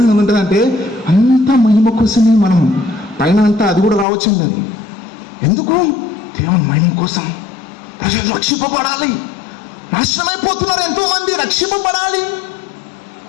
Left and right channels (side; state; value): right; drops out; at 4.0 s